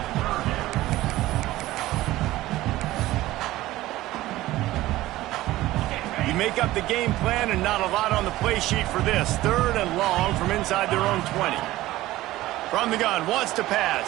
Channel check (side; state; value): left; quieter; 16.6 dB